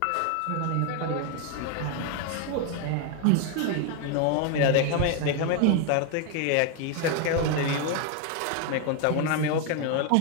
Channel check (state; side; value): different; both; correlation 0.01